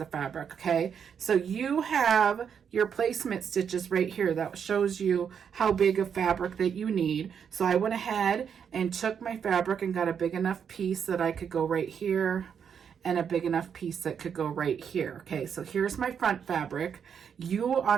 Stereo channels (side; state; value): left; quieter; 7.5 dB